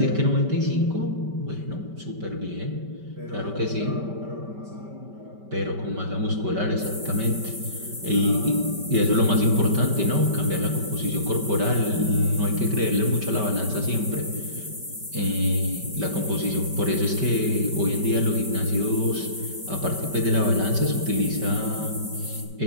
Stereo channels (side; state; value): left; late; 5.2 ms